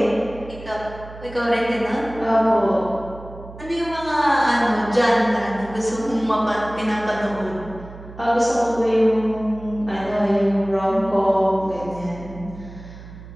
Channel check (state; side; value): noise; right; hum, 16 dB below the sound